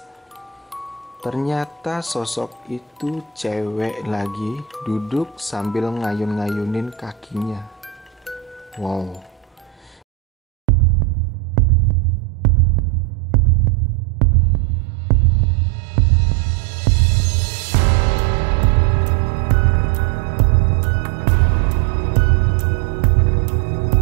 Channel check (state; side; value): drops out; left; at 10.0 s